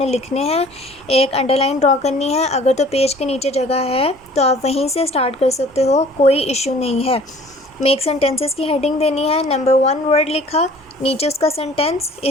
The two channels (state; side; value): normal; both; correlation 0.50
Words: لکھنے ہیں. ایک انڈر لائن ڈرا کرنی ہے. اگر تو پیج کے نیچے جگہ ہے تو آپ وہیں سے سٹارٹ کر سکتے ہو، کوئی ایشو نہیں ہے. میک سینٹینسز کی ہیڈنگ دینی ہے. نمبر 1 ورڈ لکھا، نیچے اس کا سینٹینس.